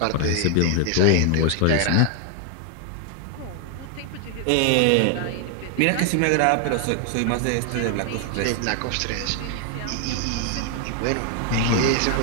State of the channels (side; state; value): both; different; correlation 0.00